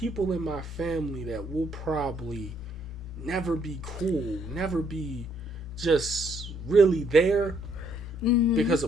in my family that will probably never be cool, never be just really there because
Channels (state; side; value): normal; both; correlation 0.69